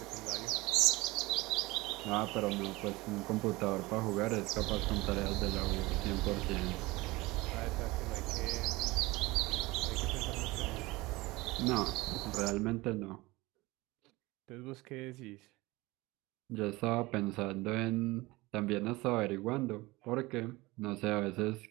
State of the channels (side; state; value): left; quieter; 21.4 dB